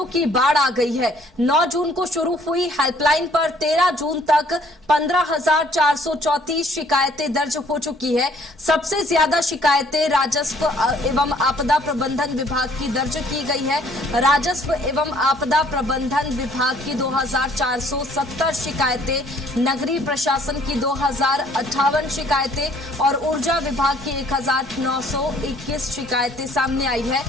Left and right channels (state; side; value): normal; both; correlation 0.60